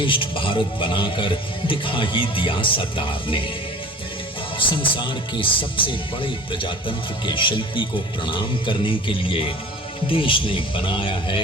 भारत बनाकर दिखा ही दिया सरदार ने। संसार के सबसे बड़े प्रजातंत्र के शिल्पी को प्रणाम करने के लिए देश ने बनाया है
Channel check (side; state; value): both; normal; correlation 0.43